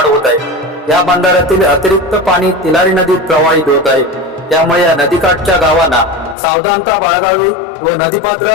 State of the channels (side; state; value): right; drops out; at 6.4 s